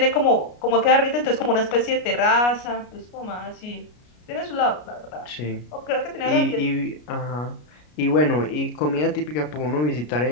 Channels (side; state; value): right; late; 33 ms